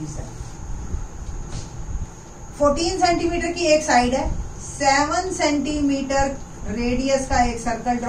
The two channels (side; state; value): both; identical; correlation 1.00